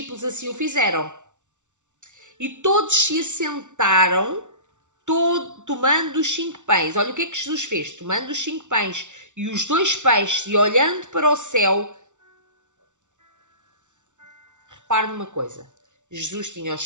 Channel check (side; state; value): left; late; 0.85 ms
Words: assim o fizeram. E todos se assentaram, tomando os 5 pães. Olha o que é que Jesus fez. Tomando os 5 pães e os 2 peixes e olhando para o céu. Repare numa coisa. Jesus tinha os